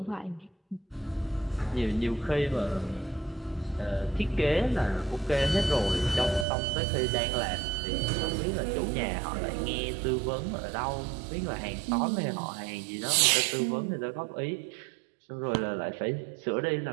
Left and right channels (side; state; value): left; drops out; at 6.5 s